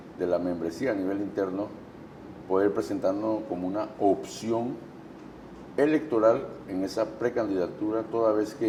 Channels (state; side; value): identical; both; correlation 1.00